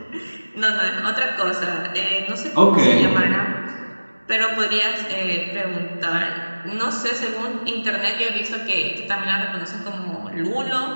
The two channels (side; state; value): both; inverted; correlation -1.00